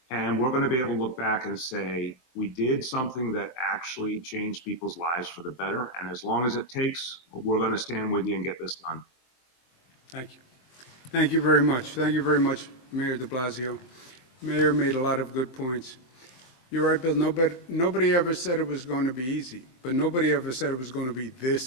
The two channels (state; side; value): late; right; 23 ms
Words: And we're going to be able to look back and say, we did something that actually changed people's lives for the better. And as long as it takes, we're going to stand with you and get this done. Thank you. Thank you very much. Thank you very much, Mayor de Blasio. Mayor made a lot of good points. You're right, Bill. Nobody ever said it was going to be easy, but nobody ever said it was going to be this